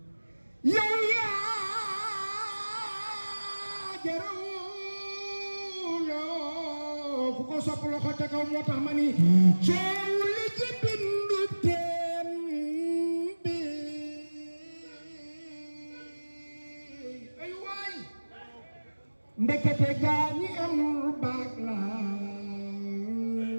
yow yaa jara wuloo ku ko sopp loxo ca kaw moo tax ma ni coow li ci bindu teen bi ay waay ndekete gaa ñi amul baag la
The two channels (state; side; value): inverted; both; correlation -1.00